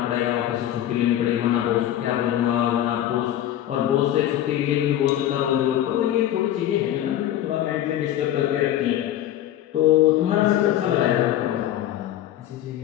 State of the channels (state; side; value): quieter; right; 12.2 dB